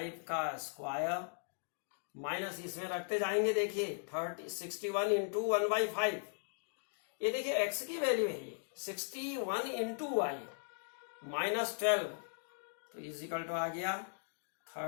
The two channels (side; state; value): right; silent; digital silence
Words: का स्क्वायर माइनस इसमें रखते जाएंगे। देखिए 61 इंटू 1/5, ये देखिए x की वैल्यू है, ये 61 इंटू वाई -12, तो इज इक्वल टू आ गया